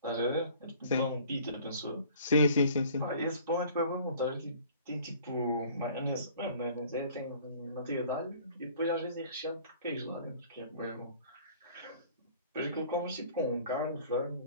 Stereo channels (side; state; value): both; inverted; correlation -0.50